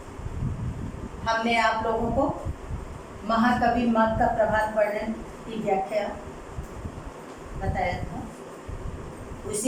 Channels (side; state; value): both; identical; correlation 1.00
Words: हमने आप लोगों को महाकवि मग का प्रभात वर्णन की व्याख्या बताया था,